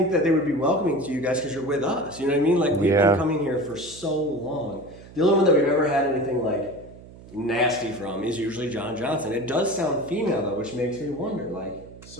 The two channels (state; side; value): noise; right; hum, 19 dB below the sound